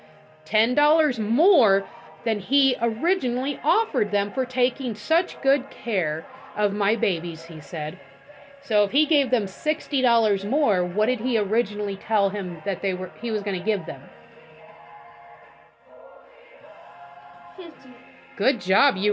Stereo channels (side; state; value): both; identical; correlation 1.00